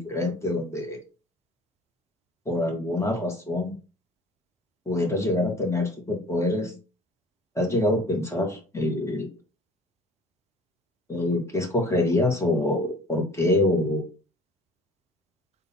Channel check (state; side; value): normal; both; correlation 0.48